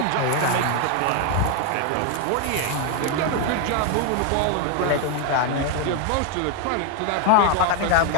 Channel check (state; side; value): different; both; correlation 0.01